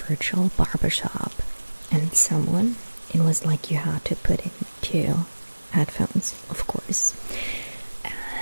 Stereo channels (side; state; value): both; inverted; correlation -1.00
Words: virtual barbershop. And it was like you had to put into headphones, of course.